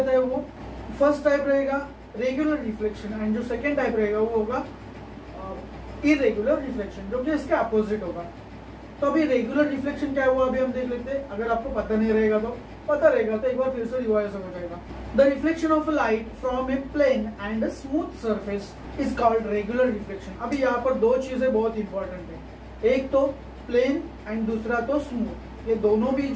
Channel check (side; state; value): both; identical; correlation 1.00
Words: है वो, फर्स्ट टाइप रहेगा रेगुलर रिफ्लेक्शन, एंड जो सेकेंड टाइप रहेगा वो होगा इरेगुलर रिफ्लेक्शन, जो कि इसके अपोजिट होगा। तो अभी रेगुलर रिफ्लेक्शन क्या हुआ अभी हम देख लेते हैं। अगर आपको पता नहीं रहेगा तो पता रहेगा तो एक बार फिर से रिवाइज हो जाएगा। The reflection of light from a plane and a smooth surface is called regular reflection. अभी यहाँ पर दो चीजें बहुत इंपॉर्टेंट है, एक तो प्लेन एंड दूसरा तो स्मूथ। ये दोनों भी